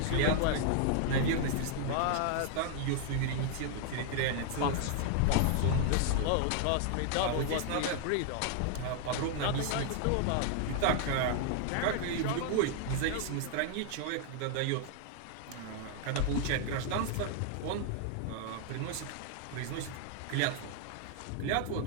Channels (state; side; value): different; both; correlation 0.00